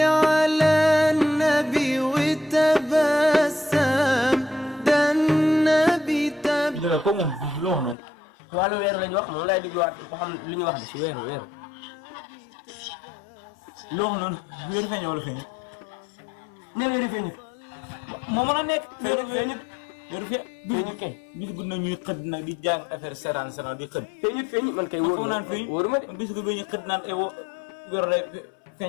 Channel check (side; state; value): right; drops out; at 8.0 s